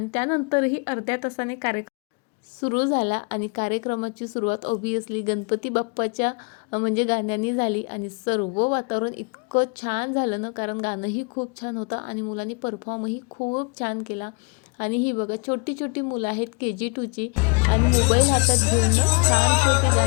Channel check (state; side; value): quieter; right; 33.2 dB